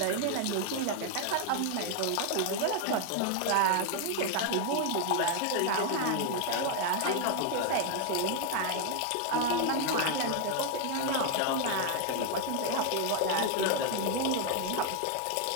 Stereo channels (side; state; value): both; different; correlation 0.01